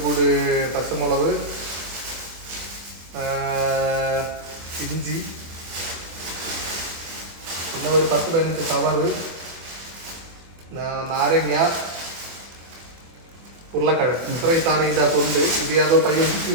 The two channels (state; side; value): late; left; 24 ms